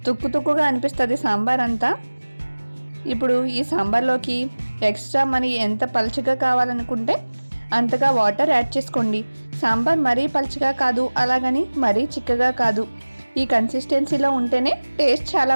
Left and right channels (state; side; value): inverted; both; correlation -1.00